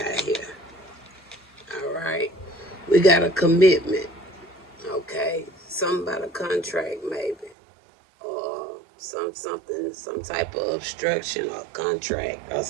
here. All right. We got a commitment. Okay. Something about a contract, maybe. Or some type of obstruction or contract or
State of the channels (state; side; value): drops out; left; at 7.6 s